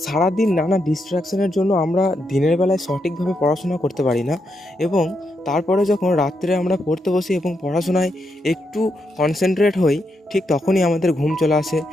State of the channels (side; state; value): both; normal; correlation 0.82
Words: সারাদিন নানা ডিস্ট্রাকশনের জন্য আমরা দিনের বেলায় সঠিকভাবে পড়াশোনা করতে পারি না, এবং তারপরে যখন রাত্রে আমরা পড়তে বসি এবং পড়াশোনায় একটু কনসেন্ট্রেট হই, ঠিক তখনই আমাদের ঘুম চলে আসে।